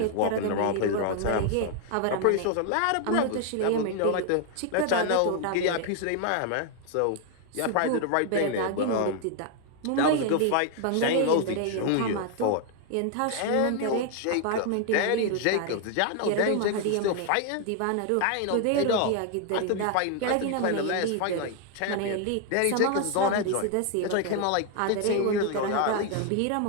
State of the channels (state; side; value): different; both; correlation 0.00